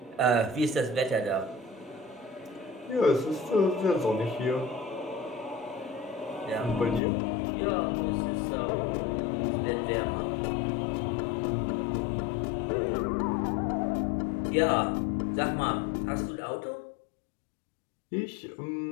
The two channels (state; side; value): drops out; right; at 7.0 s